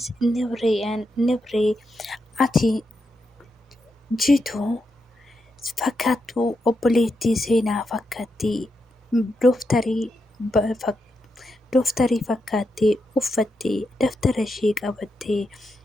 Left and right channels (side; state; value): both; normal; correlation 0.85